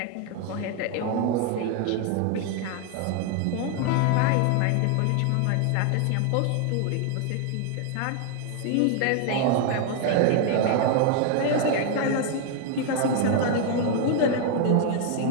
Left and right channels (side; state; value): both; different; correlation 0.01